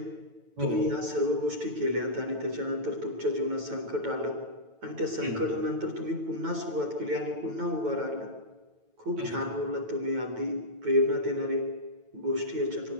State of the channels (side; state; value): left; late; 9.1 ms